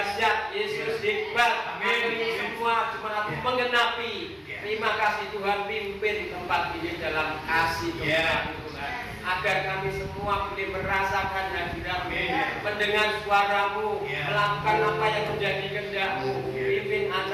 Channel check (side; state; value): both; identical; correlation 1.00